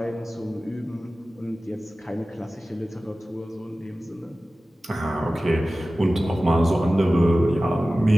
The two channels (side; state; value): both; normal; correlation 0.96